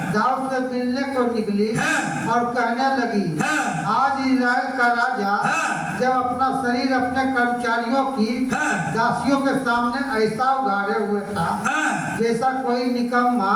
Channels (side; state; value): both; identical; correlation 1.00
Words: दाऊद से मिलने को निकली और कहने लगी, आज इस्राएल का राजा जब अपना शरीर अपने कर्मचारियों की दासियों के सामने ऐसा उघाड़े हुए था जैसा कोई निकम्मा